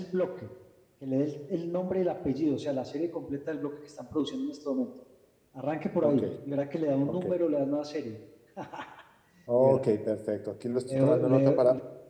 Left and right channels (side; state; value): both; identical; correlation 1.00